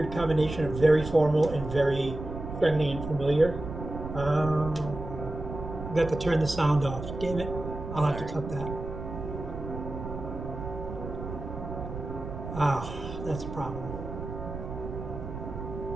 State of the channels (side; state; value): right; noise; rumble, 8 dB below the sound